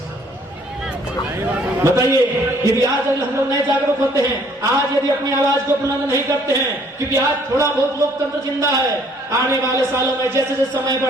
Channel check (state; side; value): normal; both; correlation 0.61